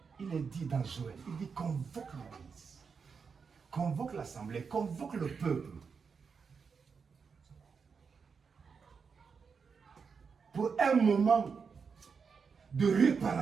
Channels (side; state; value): left; quieter; 5.7 dB